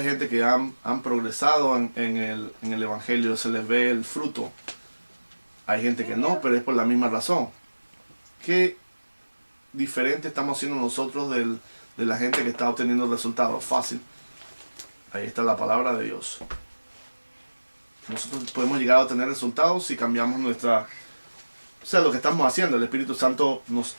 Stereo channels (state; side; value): inverted; both; correlation -1.00